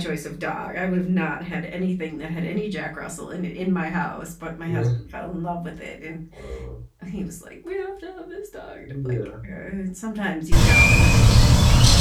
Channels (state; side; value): identical; both; correlation 1.00